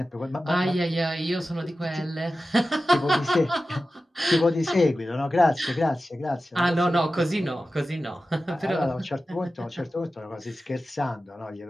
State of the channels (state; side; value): normal; both; correlation 0.94